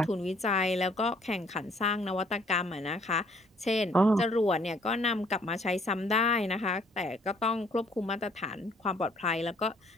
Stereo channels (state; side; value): normal; both; correlation 0.62